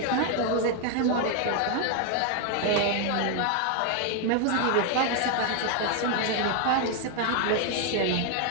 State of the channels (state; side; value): different; both; correlation 0.01